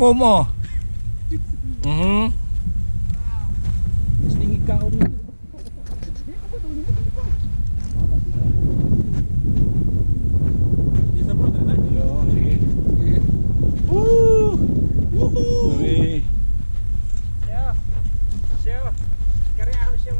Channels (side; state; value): both; inverted; correlation -1.00